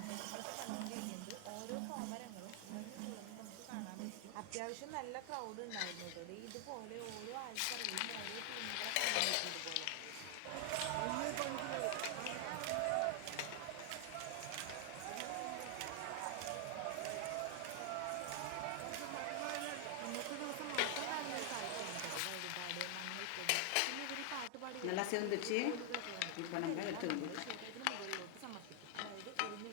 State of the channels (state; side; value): different; both; correlation 0.00